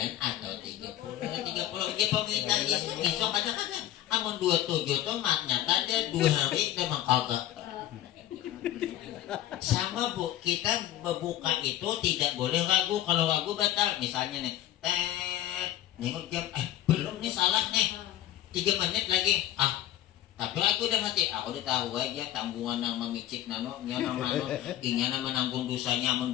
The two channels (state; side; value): quieter; right; 13.1 dB